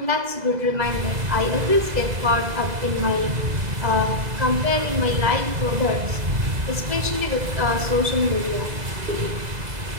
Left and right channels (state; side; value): late; left; 2.0 ms